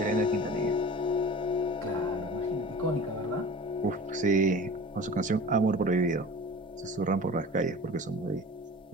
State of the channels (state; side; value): normal; both; correlation 0.39